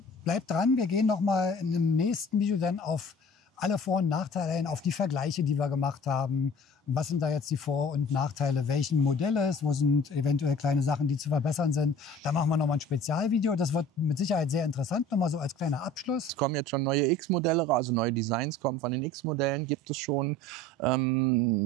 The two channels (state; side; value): normal; both; correlation 0.46